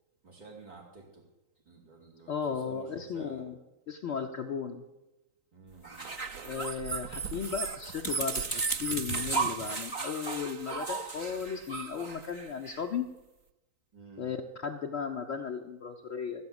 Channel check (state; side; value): late; right; 3.9 ms